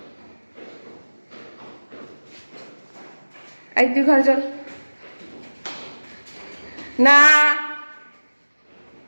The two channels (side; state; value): both; inverted; correlation -1.00